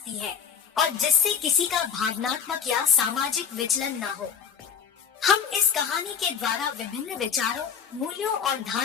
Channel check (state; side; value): quieter; right; 7.2 dB